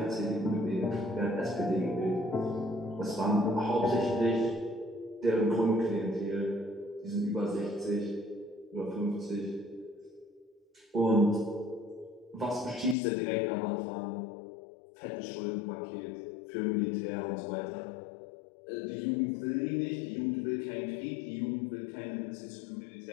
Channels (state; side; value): drops out; right; at 13.0 s